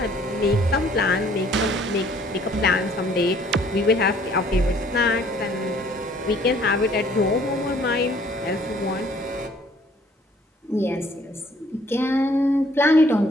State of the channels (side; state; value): both; normal; correlation 0.59